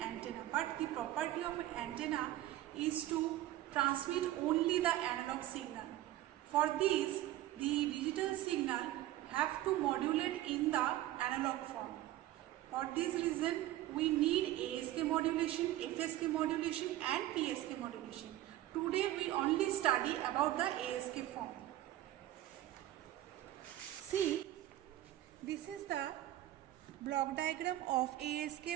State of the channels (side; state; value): left; quieter; 14.5 dB